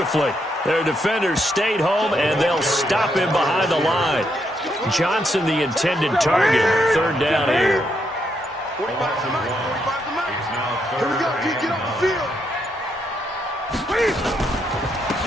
Their defenders stayed home, and they'll stop him behind the line. Johnson, the intended target. 3rd down here. Here we go, get off the field.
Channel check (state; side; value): normal; both; correlation 0.78